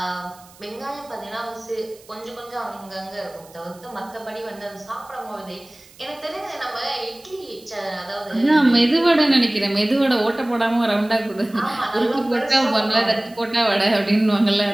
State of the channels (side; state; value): right; noise; hiss, 25 dB below the sound